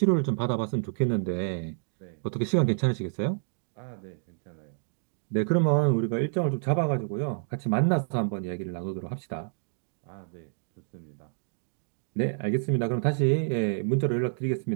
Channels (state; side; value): silent; left; digital silence